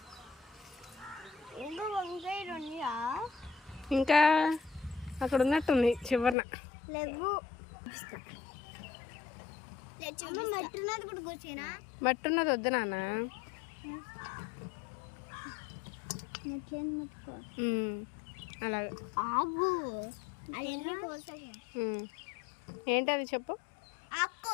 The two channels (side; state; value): right; drops out; at 6.4 s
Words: ఇంకా అక్కడ ఉన్నట్టుంది చివరన. మట్టి ఉన్నది వద్దు నాన్న. అలాగే. ఏంటి అది చెప్పు.